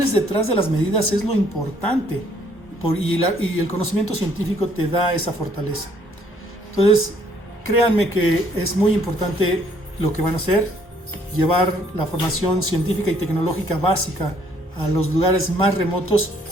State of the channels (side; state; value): both; normal; correlation 0.65